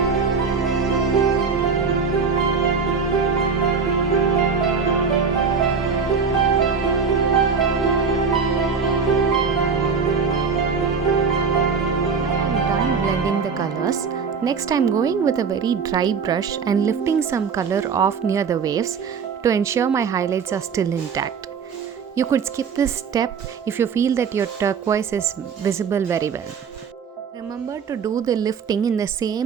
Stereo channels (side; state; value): left; quieter; 5.7 dB